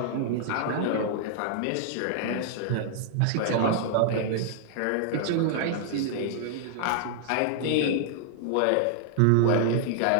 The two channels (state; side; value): different; both; correlation -0.01